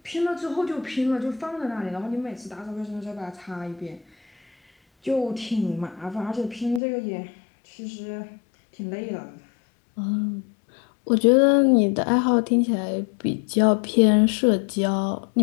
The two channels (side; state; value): right; drops out; at 6.8 s